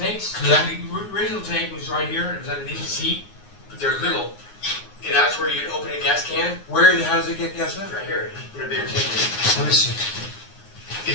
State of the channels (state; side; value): late; right; 9.6 ms